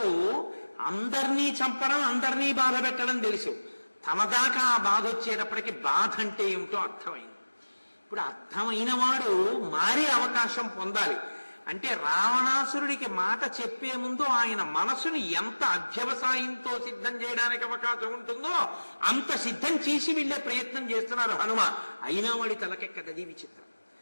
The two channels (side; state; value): both; inverted; correlation -1.00